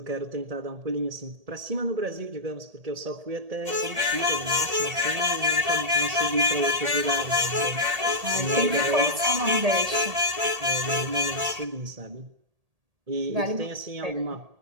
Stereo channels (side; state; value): left; late; 1.8 ms